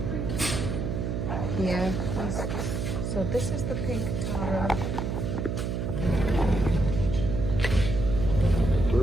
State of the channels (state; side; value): noise; right; hum, 2 dB below the sound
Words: Yeah. So this is the pink taro.